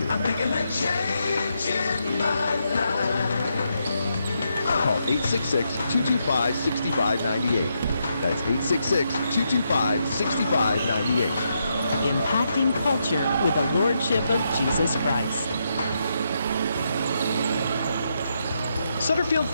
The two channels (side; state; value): both; inverted; correlation -0.81